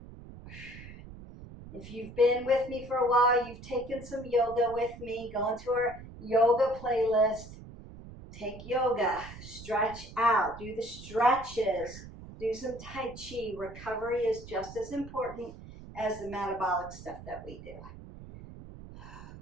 If you've been with me for a while, you've taken some yoga with me, go into our yoga playlist, take yoga, stretch out, do the stretches, do some Tai Chi. Recovery is just as important as the metabolic stuff that we do.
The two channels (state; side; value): noise; right; rumble, 15 dB below the sound